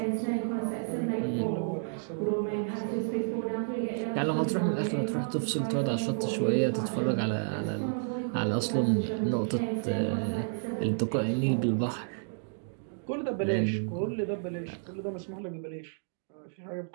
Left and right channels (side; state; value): left; silent; digital silence